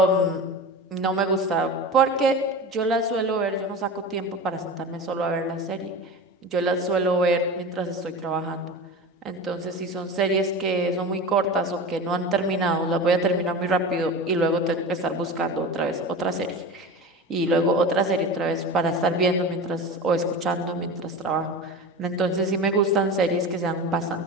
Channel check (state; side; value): normal; both; correlation 0.30